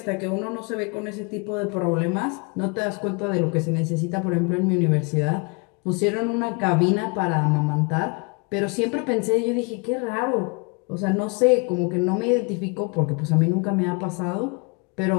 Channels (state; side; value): quieter; right; 31.5 dB